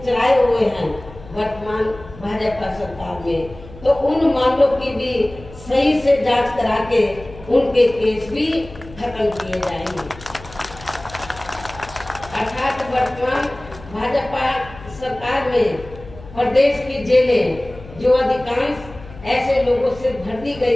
चलाए हुए हैं वर्तमान भाजपा सरकार में, तो उन मामलों की भी सही से जांच करा के उनके केस भी खत्म किए जाएंगे। अर्थात वर्तमान भाजपा सरकार में प्रदेश की जेलें जो अधिकांश ऐसे लोगों से भर दी गई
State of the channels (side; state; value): left; noise; hum, 18 dB below the sound